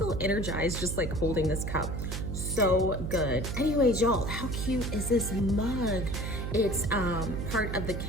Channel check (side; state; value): right; noise; hum, 4 dB below the sound